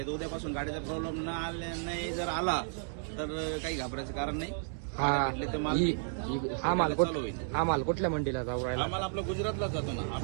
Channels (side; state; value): left; silent; digital silence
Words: तर उद्यापासून गाडीचा प्रॉब्लेम नाही जर आला तर काही घाबरायचं कारण नाही. गाड्या भेटले तर माल चालू होईल. हा माल कुठल्या मंडीला जाऊ? हा माल आपला गुजरातलाच जातो ना.